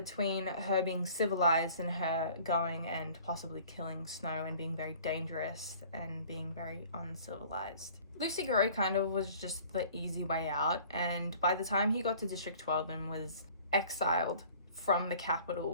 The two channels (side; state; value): both; inverted; correlation -0.50